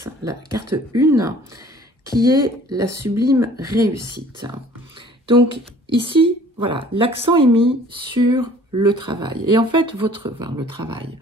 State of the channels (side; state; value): both; normal; correlation 0.52